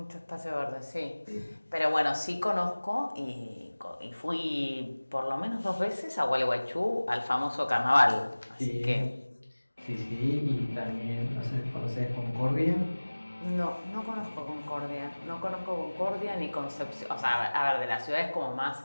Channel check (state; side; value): inverted; both; correlation -1.00